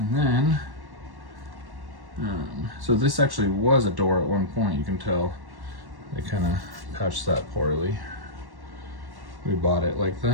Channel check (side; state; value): left; late; 1.1 ms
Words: then, so this actually was a door at one point, you can tell. They kind of patched that poorly. We bought it like